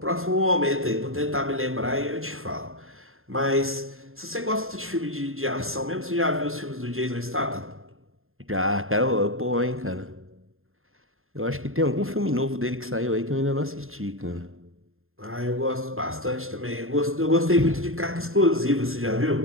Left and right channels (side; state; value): left; late; 0.61 ms